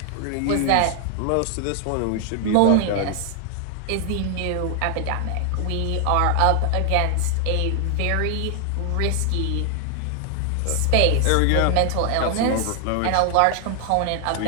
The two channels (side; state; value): both; different; correlation 0.00